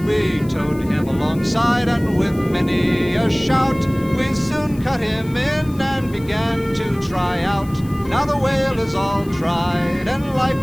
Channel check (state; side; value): noise; left; hiss, 23 dB below the sound